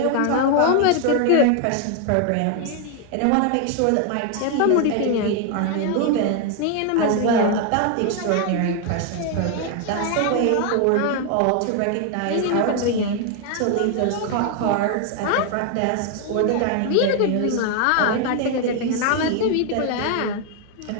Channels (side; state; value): both; different; correlation 0.01